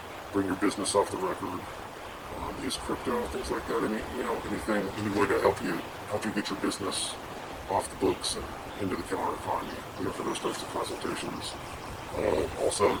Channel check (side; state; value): both; identical; correlation 1.00